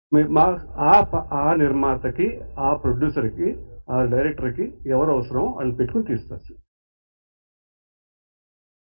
ఆ నిర్మాతకి, ఆ ప్రొడ్యూసర్కి, ఆ డైరెక్టర్కి ఎవరు అవసరమో వాళ్ళని పెట్టుకుని తీస్తారు.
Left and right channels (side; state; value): both; inverted; correlation -1.00